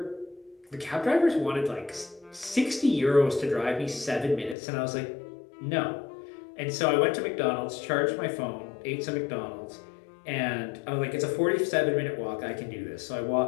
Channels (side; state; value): right; drops out; at 4.5 s